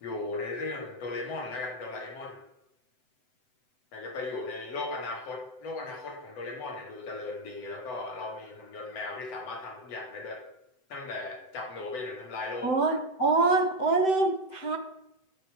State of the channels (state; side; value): late; right; 7.9 ms